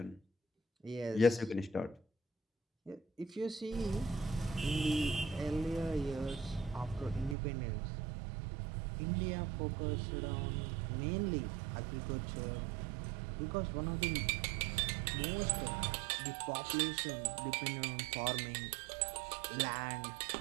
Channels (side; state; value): left; drops out; at 7.4 s